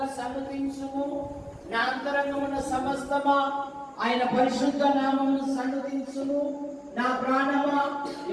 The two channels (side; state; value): both; identical; correlation 1.00